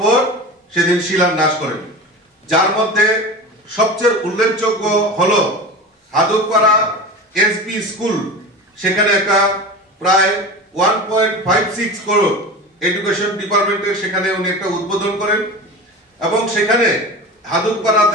সেদিন শিলান্যাস করেন, যার মধ্যে সবচেয়ে উল্লেখযোগ্য হলো হাদুকপাড়া এসবি স্কুল। সেখানে একটা প্রায় 1.56 করোড় এডুকেশন ডিপার্টমেন্টের সেখানে উনি একটা উদ্বোধন করেন এবং সেখানে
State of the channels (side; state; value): both; normal; correlation 0.30